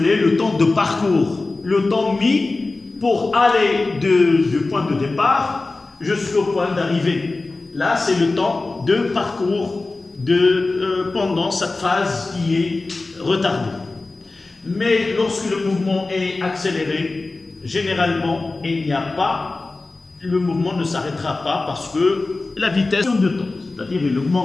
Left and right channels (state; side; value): quieter; right; 3.4 dB